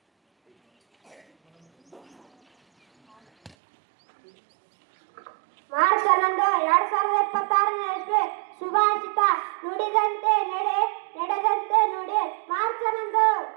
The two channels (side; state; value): left; drops out; at 3.6 s